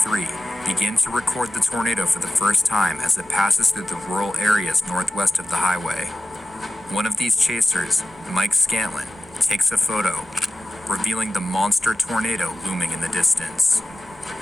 begin to record the tornado for the first time as it passes through the rural areas northwest of the highway. One of these chasers, Mike Scantlin, takes a photo, revealing the monster tornado looming in the distance.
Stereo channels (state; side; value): normal; both; correlation 0.95